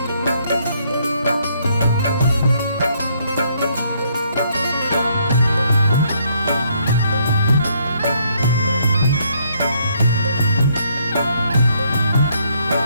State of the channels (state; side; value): inverted; both; correlation -0.70